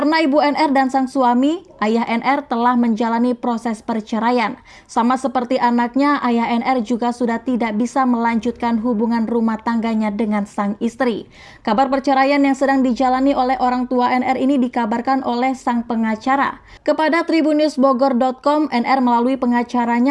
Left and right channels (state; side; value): identical; both; correlation 1.00